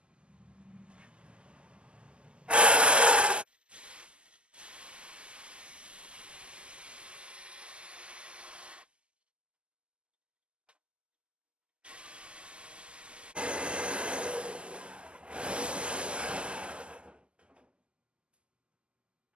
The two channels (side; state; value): left; late; 0.052 ms